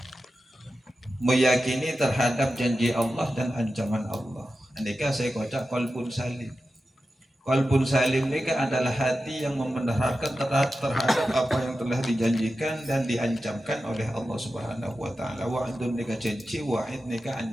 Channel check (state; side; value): normal; both; correlation 0.92